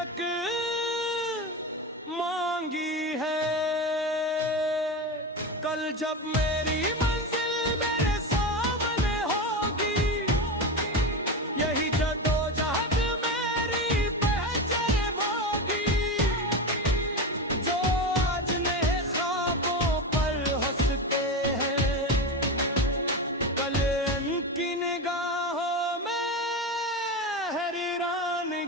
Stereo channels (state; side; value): normal; both; correlation 0.20